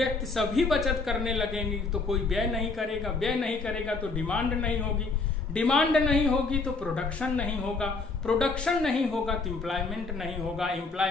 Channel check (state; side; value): quieter; right; 3.9 dB